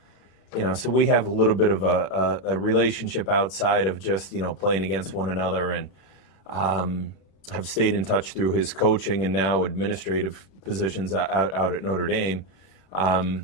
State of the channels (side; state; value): right; late; 34 ms